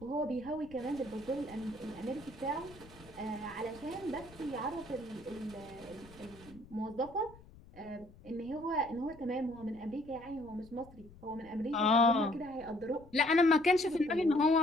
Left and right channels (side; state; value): left; noise; rumble, 22 dB below the sound